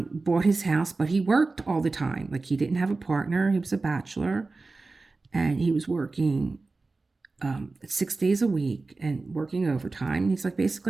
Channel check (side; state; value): left; quieter; 3.6 dB